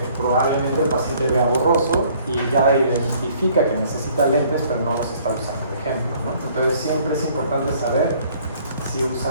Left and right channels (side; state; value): both; inverted; correlation -0.59